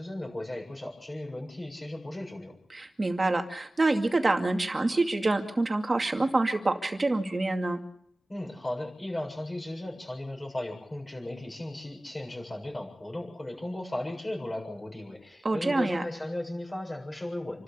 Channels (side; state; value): both; normal; correlation 0.97